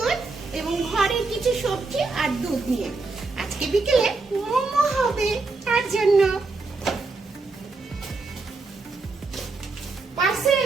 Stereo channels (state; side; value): quieter; left; 3.8 dB